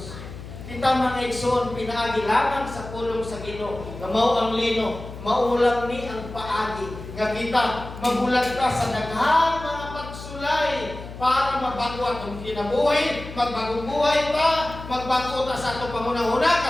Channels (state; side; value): noise; left; hum, 12 dB below the sound